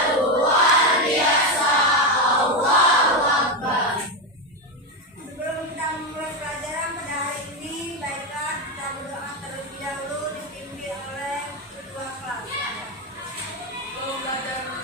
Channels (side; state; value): both; normal; correlation 0.10